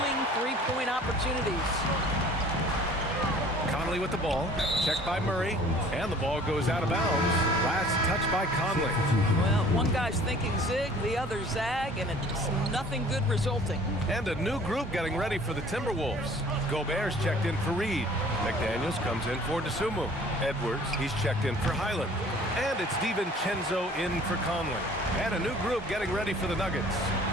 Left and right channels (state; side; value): normal; both; correlation 0.51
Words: three-point opportunities. Conley with the ball. Checked by Murray. And the ball goes out of bounds. Last touch by Conley. Well, one guy's thinking zig, the other zag, and it's nothing good resulting. And a new group getting ready for the Timberwolves. Gobert's checked in for Reed. McDaniels comes in for Tsumu. Edwards, he's checked in for Highland. And it's DiVincenzo in for Conley. And a new group getting ready for the Nuggets.